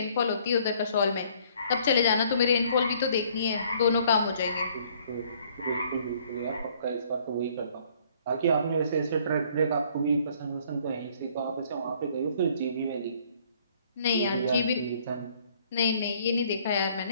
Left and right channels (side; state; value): both; inverted; correlation -0.61